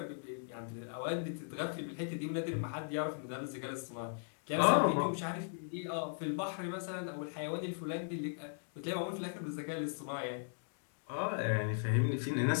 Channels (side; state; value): right; silent; digital silence